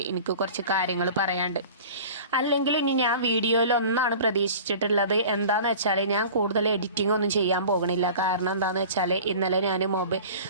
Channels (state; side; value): inverted; both; correlation -0.40